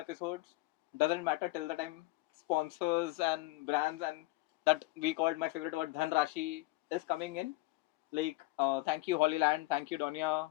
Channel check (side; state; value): right; quieter; 20.3 dB